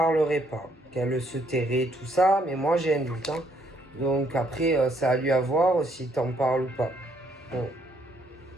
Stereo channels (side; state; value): both; normal; correlation 0.70